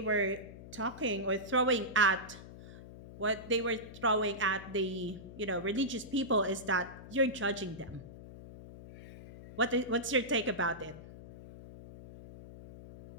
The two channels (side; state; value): left; noise; hum, 15 dB below the sound